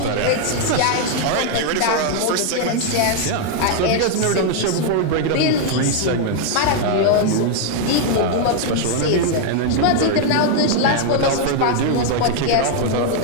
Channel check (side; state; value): both; different; correlation 0.00